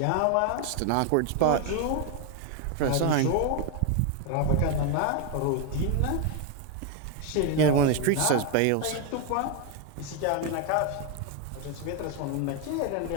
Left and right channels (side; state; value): both; different; correlation 0.01